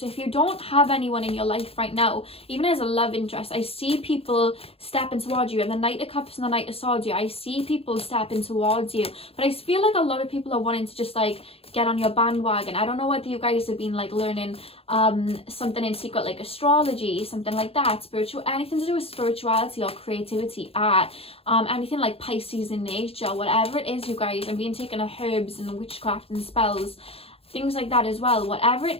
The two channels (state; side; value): late; right; 0.28 ms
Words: if you don't have anyone in your life right now, even as a love interest, I see people stepping towards you, and the Knight of Cups and the Knight of Swords, I see people stepping towards you, but I feel like a lot of people are wanting to just like get on your bandwagon. I don't know whether you guys have been like learning something in secret, like astrology, something like that, spiritual, anything to do with spirituality or creativity, art, anything like Pisces in nature, whatever it is, you guys, and being taken of herbs and witchcraft and spells, things like that as well. Whatever